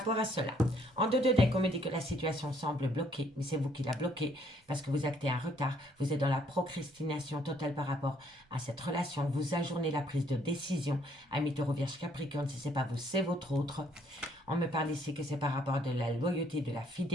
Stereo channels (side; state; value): both; normal; correlation 0.66